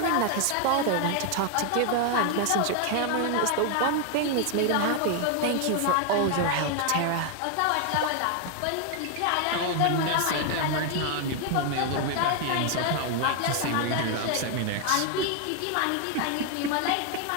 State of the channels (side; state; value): both; different; correlation 0.00